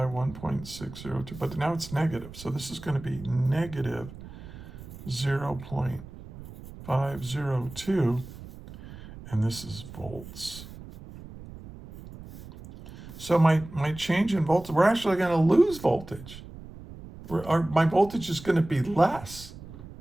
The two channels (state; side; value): noise; right; rumble, 15 dB below the sound